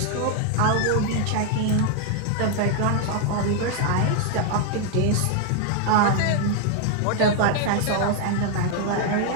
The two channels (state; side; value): different; both; correlation 0.00